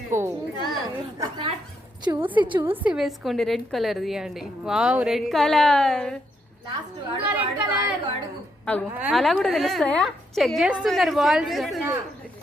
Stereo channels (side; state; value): both; normal; correlation 0.78